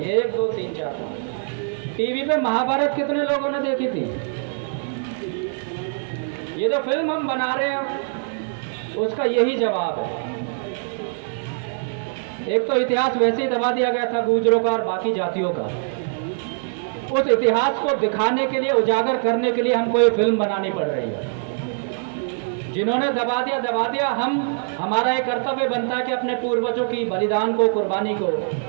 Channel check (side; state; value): left; silent; 63 dB below the other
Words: 1 2 3 4 5। टीवी पे महाभारत कितने लोगों ने देखी थी? ये जो फिल्म हम बना रहे हैं उसका यही जवाब है। एक तो इतिहास वैसे ही दबा दिया गया था गुजरों का और बाकी जातियों का, उस इतिहास को दिखाने के लिए, उजागर करने के लिए हमको ये फिल्म बनानी पड़ रही है। जिन्होंने दबा दिया, हमारा एक कर्तव्य बनता है कि अपने पूर्वजों की बलिदान को, कुर्बानी को